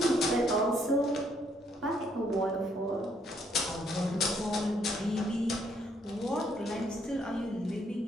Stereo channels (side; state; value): both; normal; correlation 0.70